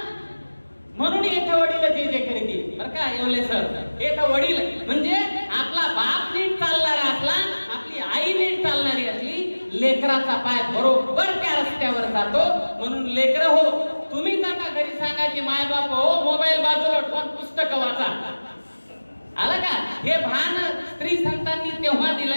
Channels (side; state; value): both; inverted; correlation -1.00